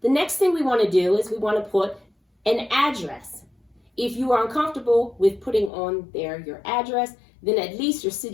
The next thing we want to do is we want to put an address. If you are uncomfortable with putting on there your address, then at least your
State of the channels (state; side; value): drops out; right; at 5.7 s